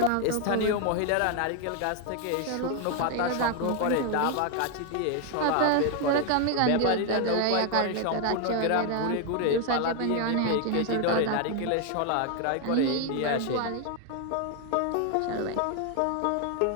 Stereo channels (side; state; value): both; different; correlation 0.00